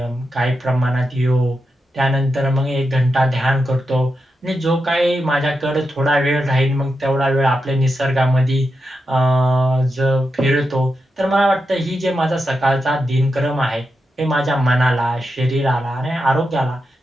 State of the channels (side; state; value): both; normal; correlation 0.87